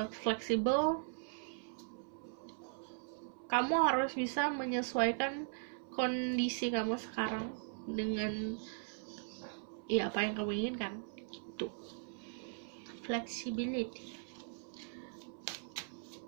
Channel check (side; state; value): left; silent; 52 dB below the other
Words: fleksibel, kamu harus bisa menyesuaikan kondisi kamu sekarang dengan ya apa yang kamu inginkan. Itu flexibility.